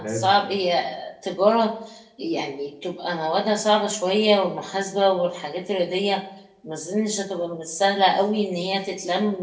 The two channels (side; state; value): both; identical; correlation 1.00